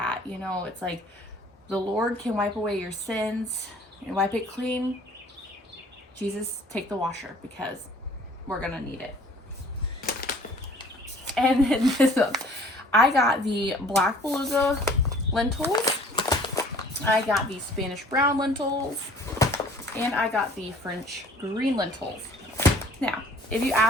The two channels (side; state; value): both; normal; correlation 0.53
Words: You know, it's like the Lord can wipe away your sins and wipe it clean. Jesus, take the washer because we're going to need it. And then this one, I got the Black Beluga lentils. I got the Spanish brown lentils. And I got the French green lentils. Now, if you